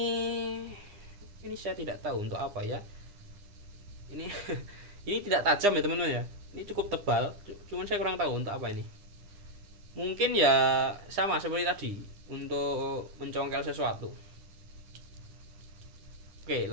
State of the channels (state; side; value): late; left; 9.9 ms